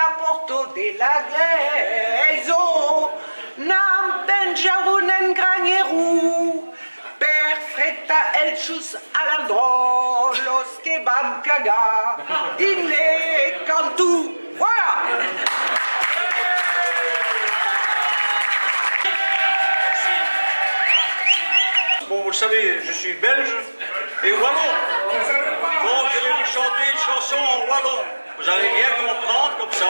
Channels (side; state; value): both; inverted; correlation -1.00